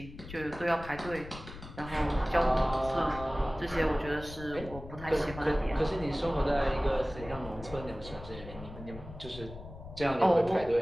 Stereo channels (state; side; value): noise; left; rumble, 14 dB below the sound